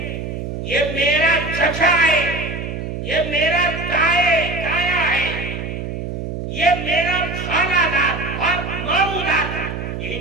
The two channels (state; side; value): noise; right; hum, 6 dB below the sound